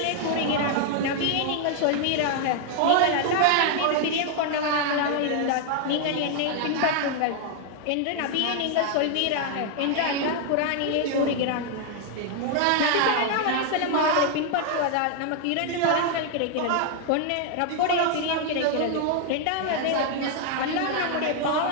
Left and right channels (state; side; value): different; both; correlation 0.00